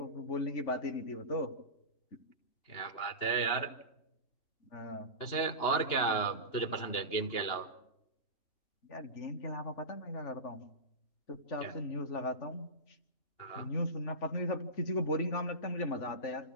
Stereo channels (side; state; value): right; late; 2.8 ms